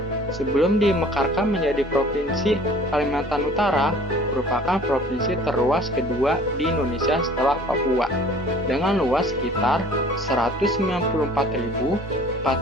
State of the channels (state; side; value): normal; both; correlation 0.49